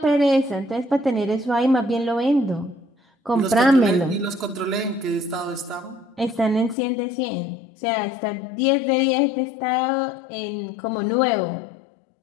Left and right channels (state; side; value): drops out; right; at 6.8 s